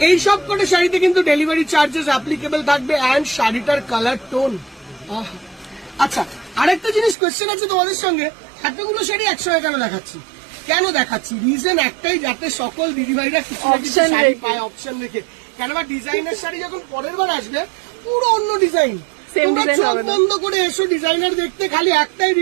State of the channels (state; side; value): drops out; left; at 7.2 s